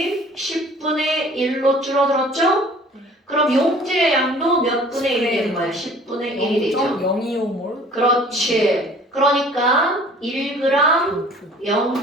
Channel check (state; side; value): normal; both; correlation 0.50